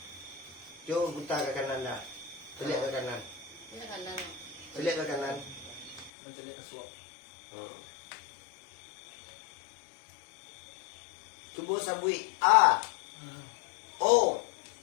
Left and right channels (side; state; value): right; drops out; at 6.1 s